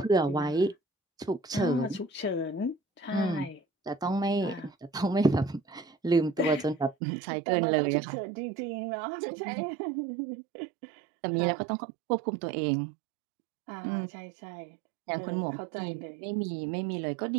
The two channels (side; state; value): left; drops out; at 7.0 s